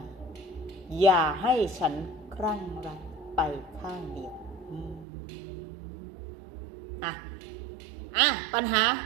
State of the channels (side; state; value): left; drops out; at 5.1 s